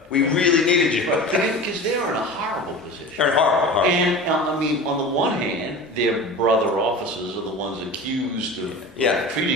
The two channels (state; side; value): normal; both; correlation 0.34